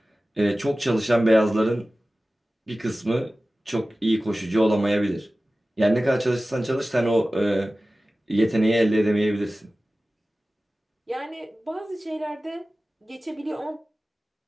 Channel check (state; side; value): normal; both; correlation 0.96